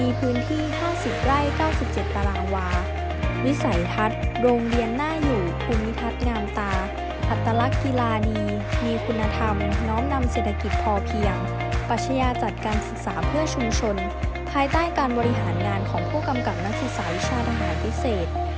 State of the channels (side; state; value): both; identical; correlation 1.00